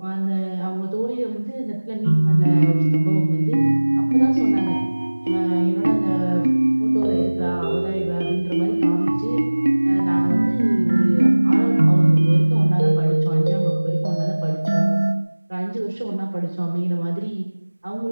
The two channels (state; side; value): inverted; both; correlation -1.00